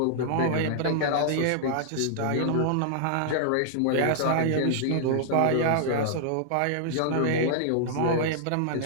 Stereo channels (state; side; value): different; both; correlation -0.01